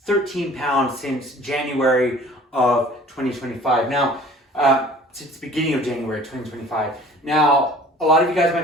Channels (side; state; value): both; normal; correlation 0.48